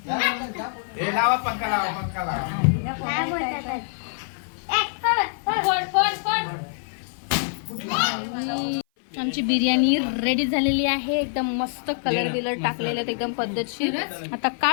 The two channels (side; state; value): right; silent; 57 dB below the other